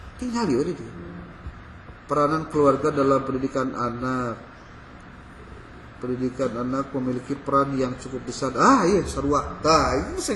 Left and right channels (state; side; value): identical; both; correlation 1.00